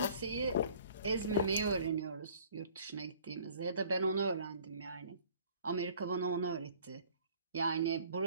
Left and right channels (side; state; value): both; inverted; correlation -0.53